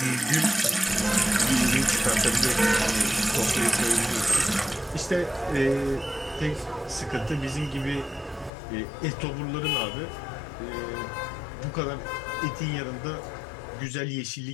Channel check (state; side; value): drops out; right; at 8.5 s